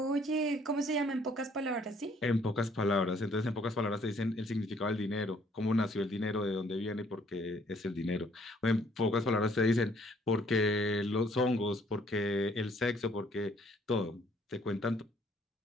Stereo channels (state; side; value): normal; both; correlation 0.63